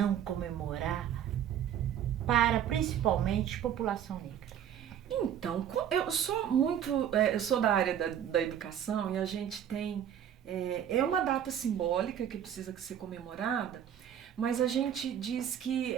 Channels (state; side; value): quieter; left; 9.6 dB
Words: comemorar para principalmente a população negra. Então, eu sou da área da educação e a gente tem, uma data simbólica que precisa ser comemorada, mas a gente diz que